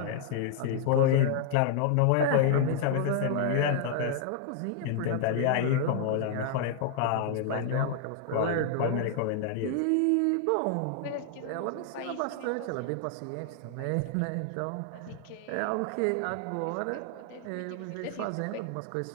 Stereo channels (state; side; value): different; both; correlation 0.00